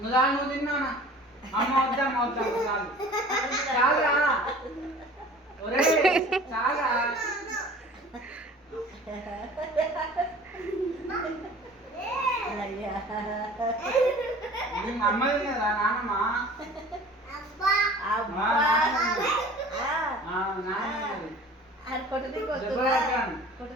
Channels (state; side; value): normal; both; correlation 0.45